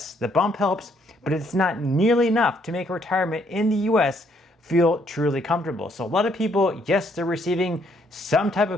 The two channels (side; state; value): both; normal; correlation 0.69